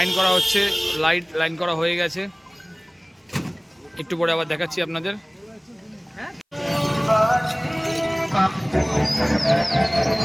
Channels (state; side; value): identical; both; correlation 1.00